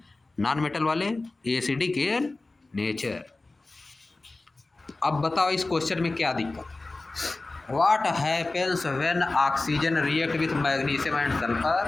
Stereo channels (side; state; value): right; quieter; 3.2 dB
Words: नॉन मेटल वाले एसिडिक इन नेचर। अब बताओ इस क्वेश्चन में क्या दिक्कत? What happens when oxygen react with magnesium and